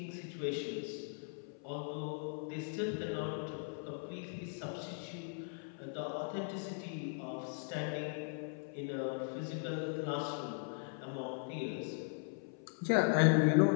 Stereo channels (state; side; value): silent; right; 52 dB below the other